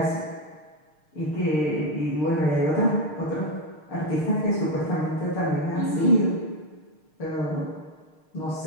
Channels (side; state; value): right; late; 6.5 ms